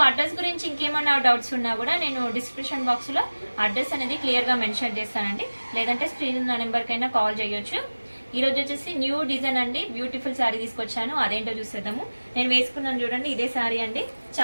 అడ్రస్ గురించి ఇంకేమైనా డౌట్స్ ఉన్నా కూడా నేను డిస్క్రిప్షన్ బాక్స్ లో అడ్రస్ అనేది క్లియర్ గా మెన్షన్ చేస్తానండి, లేదంటే స్క్రీన్ నెంబర్ కైనా కాల్ చేయొచ్చు. ఈ రోజు వచ్చేసి న్యూ డిజైన్ అండి, బ్యూటిఫుల్ శారీ తీసుకొచ్చాను, అదేంటో చూసేద్దాము. నేను వేసుకున్నాను చూడండి, ఇదే శారీ అండి,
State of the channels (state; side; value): inverted; both; correlation -1.00